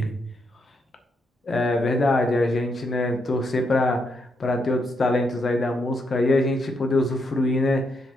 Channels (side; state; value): both; normal; correlation 0.79